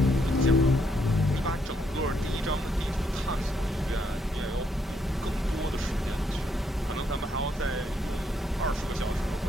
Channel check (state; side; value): normal; both; correlation 0.74